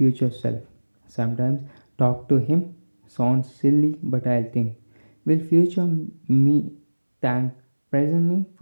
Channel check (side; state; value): both; inverted; correlation -1.00